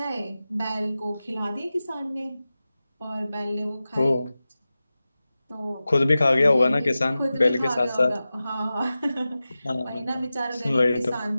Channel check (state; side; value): inverted; both; correlation -0.95